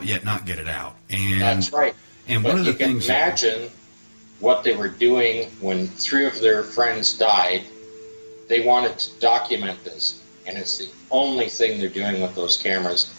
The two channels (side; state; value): both; inverted; correlation -1.00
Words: yet not get it out. And that's right. And but one of the you can things imagine what they were doing when 3 of their friends died. They wanted to document this, and it's the only thing they're doing with those cameras,